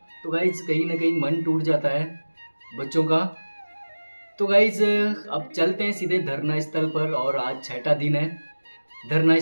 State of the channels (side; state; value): both; inverted; correlation -1.00